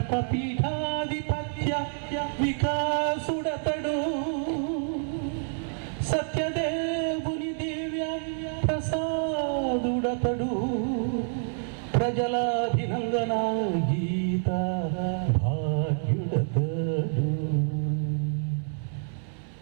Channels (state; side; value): silent; left; 59 dB below the other